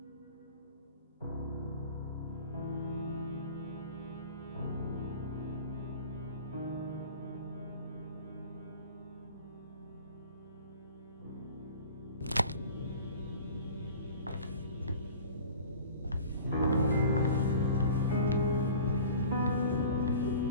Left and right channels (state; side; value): inverted; both; correlation -0.41